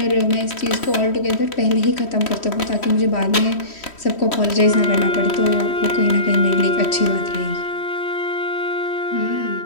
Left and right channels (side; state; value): right; late; 3.1 ms